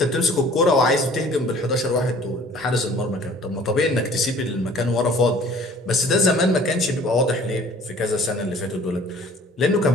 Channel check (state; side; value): normal; both; correlation 0.51